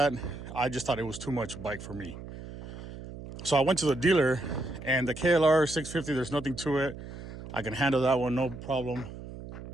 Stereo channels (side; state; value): right; noise; hum, 12 dB below the sound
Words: I just thought it was too much bike for me. So I went to the dealer, and the KLR 650, there's nothing to it. I can handle that one, no problem.